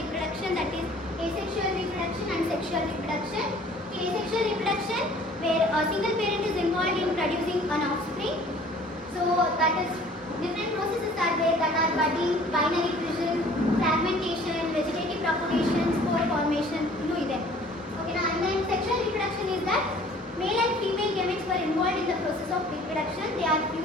reproduction, that is asexual reproduction and sexual reproduction. In asexual reproduction where a single parent is involved in producing an offspring, so that is different processes are there, that are budding, binary fission, fragmentation, vegetative propagation, spore formation, ಇನ್ನೂ ಇದೆ. Okay, and then sexual reproduction is that male and female gametes were involved in the process of reproduction. They are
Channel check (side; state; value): both; normal; correlation 0.52